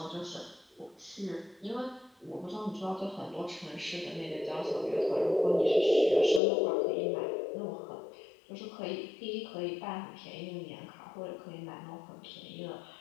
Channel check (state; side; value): drops out; right; at 6.4 s